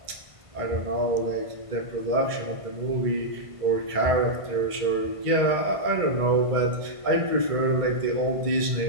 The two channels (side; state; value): left; late; 1.5 ms